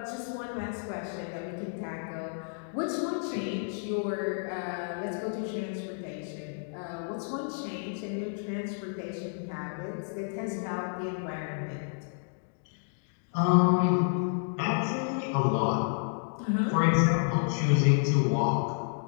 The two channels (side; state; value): right; silent; digital silence